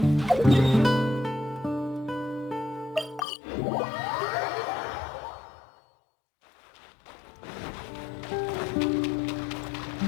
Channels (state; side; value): drops out; right; at 3.2 s